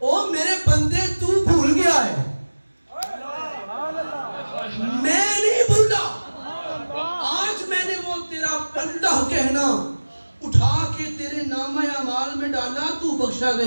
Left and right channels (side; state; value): both; inverted; correlation -1.00